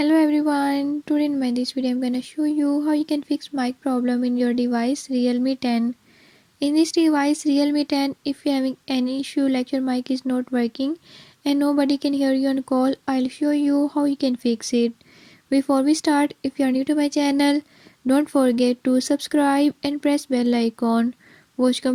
everyone, today in this video I'm gonna show you how you can fix mic problem in your device Realme 10. In this device Realme 10, if you're having any issue like your mic is not working and nobody can hear you on call, I'll show you how you can fix it. Before we start, if you are new to my channel, don't forget to subscribe and press bell icon. Watch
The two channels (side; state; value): both; identical; correlation 1.00